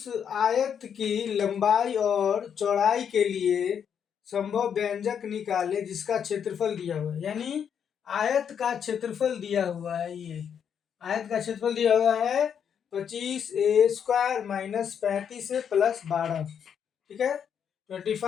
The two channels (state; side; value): quieter; right; 7.9 dB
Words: आयत की लंबाई और चौड़ाई के लिए संभव व्यंजक निकाले जिसका क्षेत्रफल दिया हुआ है। यानी आयत का क्षेत्रफल दिया हुआ है। ये आयत का क्षेत्रफल दिया हुआ है 25a² माइनस 35a प्लस 12, ठीक है।